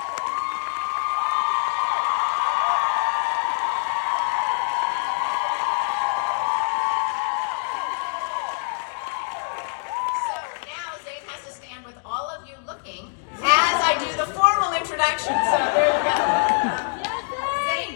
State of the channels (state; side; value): silent; right; digital silence